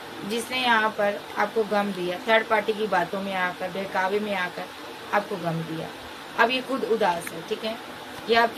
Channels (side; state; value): both; identical; correlation 1.00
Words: जिसने यहाँ पर आपको गम दिया, थर्ड पार्टी की बातों में आकर, बहकावे में आकर आपको गम दिया। अब ये खुद उदास है, ठीक है, ये